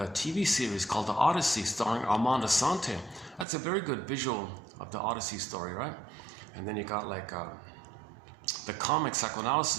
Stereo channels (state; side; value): drops out; left; at 3.5 s